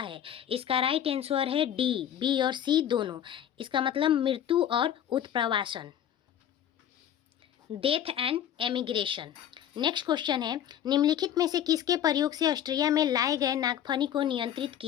इसका राइट आंसर है डी, बी और सी दोनों। इसका मतलब मृत्यु और उत्प्रवासन, death and emigration. Next question है, निम्नलिखित में से किसके प्रयोग से ऑस्ट्रिया में लाए गए नागफनी को नियंत्रित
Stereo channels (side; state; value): right; quieter; 10.3 dB